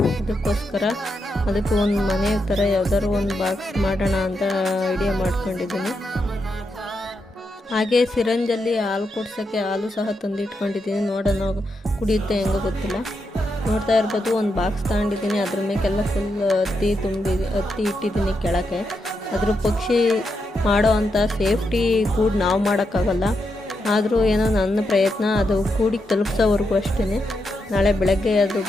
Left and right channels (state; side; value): normal; both; correlation 0.84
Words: ಅದಕ್ಕೋಸ್ಕರ ಅದಕ್ಕೆ ಒಂದು ಮನೆ ಥರ ಯಾವ್ದಾದ್ರು ಒಂದು ಬಾಕ್ಸ್ ಮಾಡೋಣ ಅಂತ ಐಡಿಯಾ ಮಾಡ್ಕೊಂಡಿದ್ದೀನಿ. ಹಾಗೆ ಸಿರಂಜಲ್ಲಿ ಹಾಲು ಕೊಡ್ಸೋಕ್ಕೆ ಹಾಲು ಸಹ ತಂದಿಟ್ಕೊಂಡಿದ್ದೀನಿ. ನೋಡೋಣ ಕುಡಿಯುತ್ತೆ ಹೆಂಗೋ ಗೊತ್ತಿಲ್ಲ. ನೋಡ್ತಾ ಇರ್ಬೋದು, ಒಂದು ಬಾಕ್ಸ್ ತಗೊಂಡಿದ್ದೀನಿ. ಅದ್ರ ಮೇಲೆಲ್ಲ ಫುಲ್ ಹತ್ತಿ ಇಟ್ಟಿದ್ದೀನಿ ಕೆಳಕ್ಕೆ. ಅದ್ರ ಪಕ್ಷಿ ಮಾಡೋ ಅಂಥ ಸೇಫ್ಟಿ ಕೂಡ ನಾವು ಮಾಡೋಕ್ಕಾಗಲ್ಲ. ಆದರೂ ಏನೋ ನನ್ನ ಪ್ರಯತ್ನ, ಅದು ಕೂಡಿಗೆ ತಲುಪಿಸೋವರೆಗೂ ಅಷ್ಟೇ. ನಾಳೆ ಬೆಳಗ್ಗೆ ಅದು